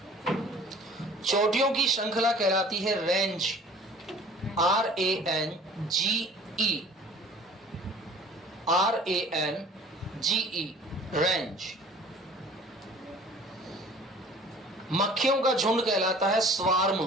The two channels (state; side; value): normal; both; correlation 0.48